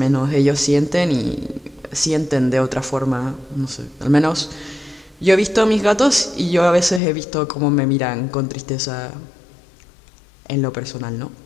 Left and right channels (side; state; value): right; drops out; at 7.0 s